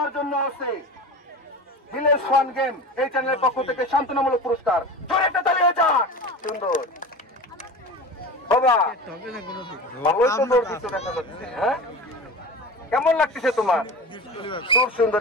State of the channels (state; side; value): normal; both; correlation 0.32